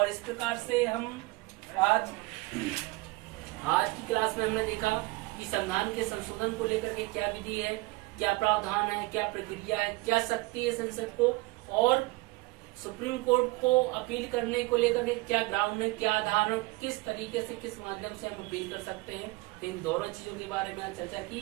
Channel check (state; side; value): quieter; left; 22.7 dB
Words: इस प्रकार से हम आज की क्लास में हमने देखा कि संविधान के संशोधन को लेकर के क्या विधि है, क्या प्रावधान है, क्या प्रक्रिया है, क्या शक्ति है संसद को, और सुप्रीम कोर्ट को अपील करने को लेकर के क्या ग्राउंड है, क्या आधार है, किस तरीके से, किस माध्यम से हम अपील कर सकते हैं। तो इन दोनों चीजों के बारे में चर्चा